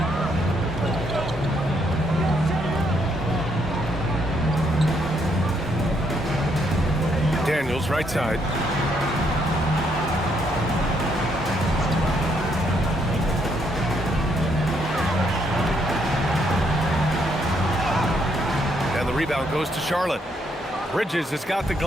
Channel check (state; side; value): normal; both; correlation 0.73